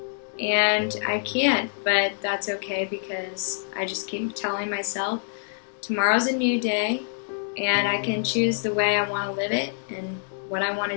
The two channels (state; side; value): silent; right; digital silence